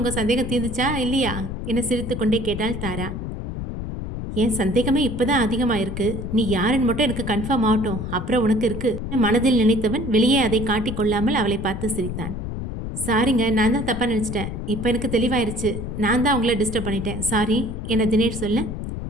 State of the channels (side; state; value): left; noise; rumble, 6 dB below the sound